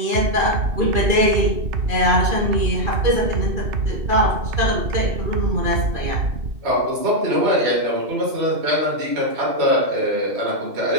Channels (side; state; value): left; late; 2.6 ms